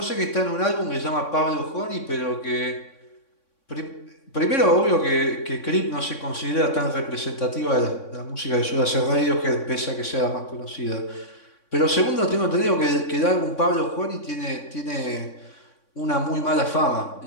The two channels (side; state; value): right; late; 3.6 ms